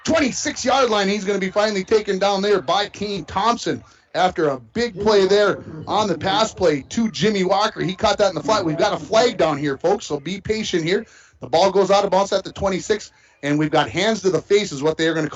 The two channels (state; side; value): identical; both; correlation 1.00